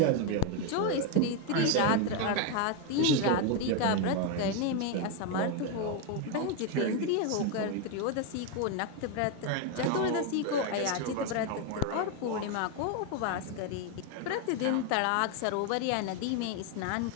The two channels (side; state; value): both; different; correlation 0.02